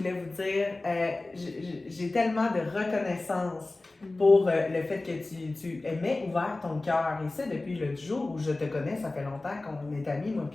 vous dire, j'ai tellement de reconnaissance pour le fait que tu aimais ouvert ton cœur. Et ça, depuis le jour où je te connais, ça fait longtemps qu'on est amis, moi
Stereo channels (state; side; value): quieter; right; 3.1 dB